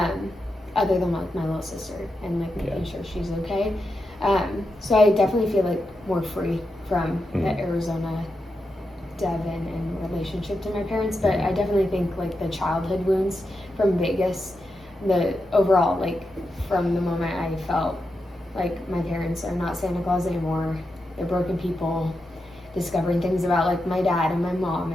than like my little sister and like making sure she's okay. So I definitely feel like more free from the Arizona Devin and relationship to my parents, but I definitely think like the childhood wounds from Vegas, the overall, like from the moment I felt like my parents are not Santa Claus anymore, they're broken people, discovering things about like my dad and my mom,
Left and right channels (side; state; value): both; normal; correlation 0.87